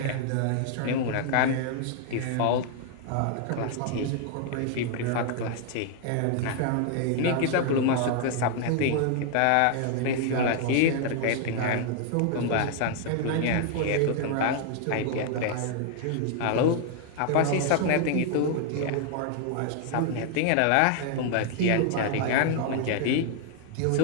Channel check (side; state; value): both; different; correlation 0.00